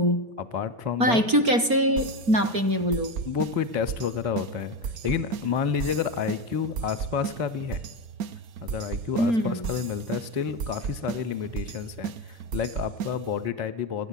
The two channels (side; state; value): left; late; 4.3 ms